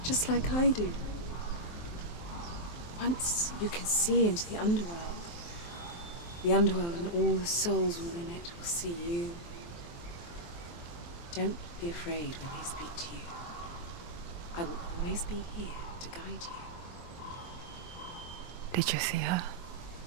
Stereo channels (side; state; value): right; late; 23 ms